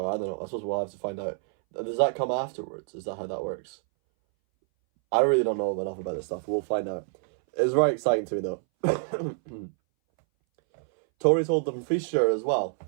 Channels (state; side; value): silent; left; 60 dB below the other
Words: I don't know. I suppose we'll have to find out. Does that come afterwards? Is that how that works? I really don't know enough about this stuff. We'll find out. It's very exciting to me, though. Tories hold Dumfriesshire as well.